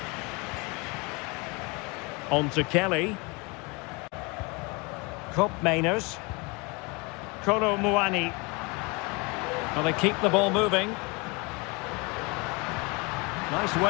On to Kelly. Koopmeiners. Kolo Muani. Well, they keep the ball moving. Nice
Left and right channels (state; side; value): quieter; right; 28.1 dB